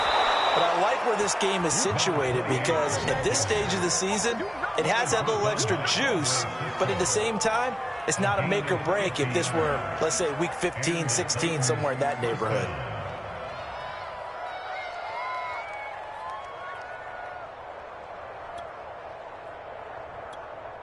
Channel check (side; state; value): both; identical; correlation 1.00